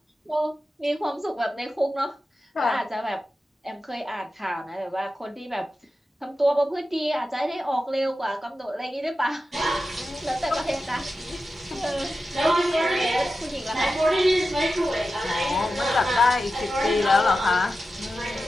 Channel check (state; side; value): normal; both; correlation 0.92